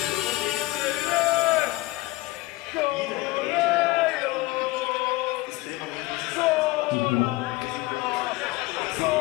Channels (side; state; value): right; quieter; 19.7 dB